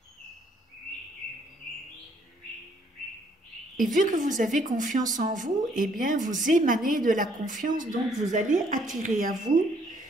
Et vu que vous avez confiance en vous, eh bien, vous émanez de la confiance, donc vous allez attirer à vous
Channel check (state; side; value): normal; both; correlation 0.66